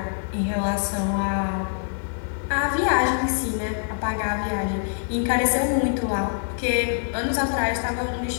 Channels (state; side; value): silent; right; digital silence